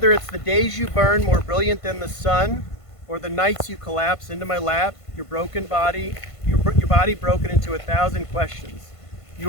it's the days you burn more brilliant than the sun, or the nights you collapse into my lap, your body broken into 1,000 questions.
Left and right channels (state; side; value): late; right; 1.5 ms